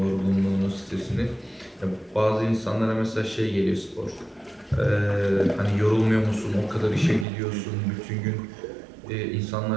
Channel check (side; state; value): left; drops out; at 7.2 s